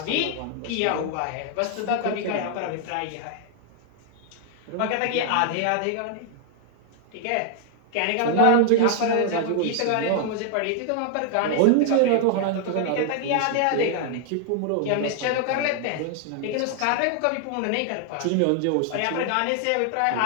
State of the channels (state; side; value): different; both; correlation 0.00